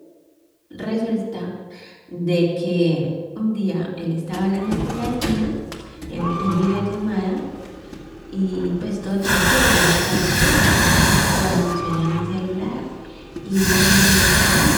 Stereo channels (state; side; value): identical; both; correlation 1.00